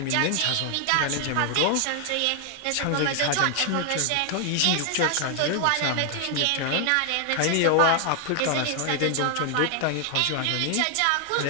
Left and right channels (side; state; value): both; different; correlation 0.00